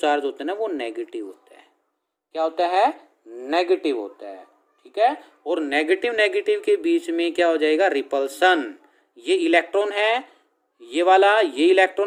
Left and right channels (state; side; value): identical; both; correlation 1.00